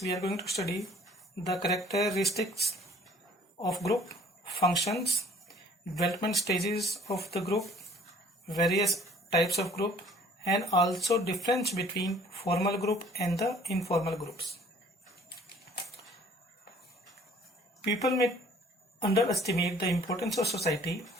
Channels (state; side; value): normal; both; correlation 0.54